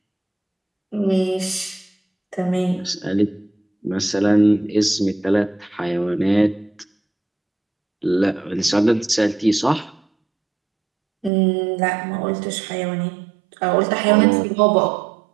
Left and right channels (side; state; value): left; drops out; at 11.3 s